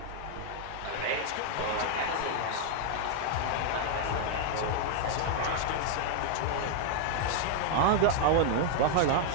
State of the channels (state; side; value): different; both; correlation 0.00